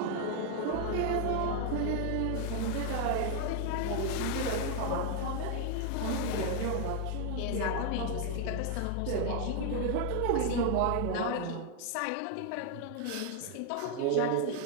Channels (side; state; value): both; different; correlation 0.00